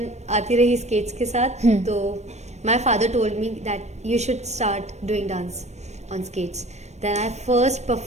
आती रही स्केट्स के साथ. तो my father told me that you should start doing dance on skates. Then I first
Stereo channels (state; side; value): late; left; 0.32 ms